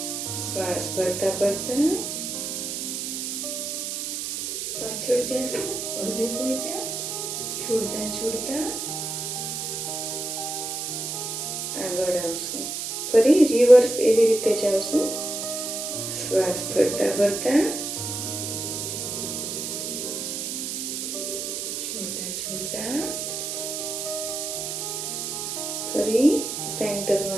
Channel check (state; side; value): noise; right; hiss, 3 dB below the sound